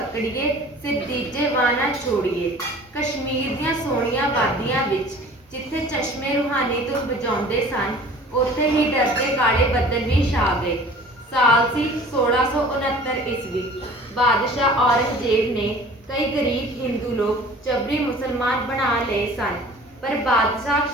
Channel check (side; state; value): both; normal; correlation 0.46